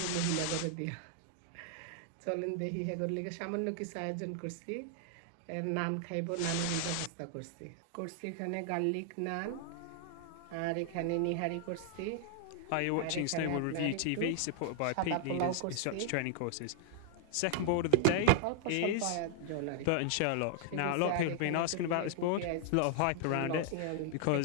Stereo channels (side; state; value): both; different; correlation -0.01